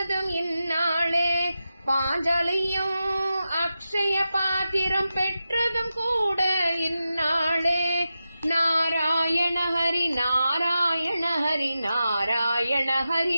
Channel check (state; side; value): inverted; both; correlation -0.91